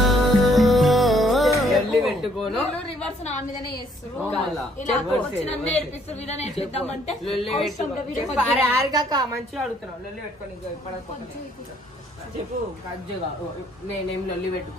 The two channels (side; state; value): both; normal; correlation 0.65